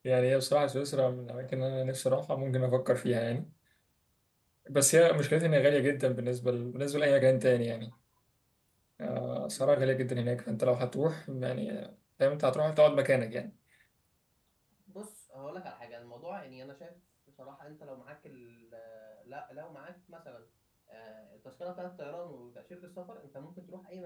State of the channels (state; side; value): identical; both; correlation 1.00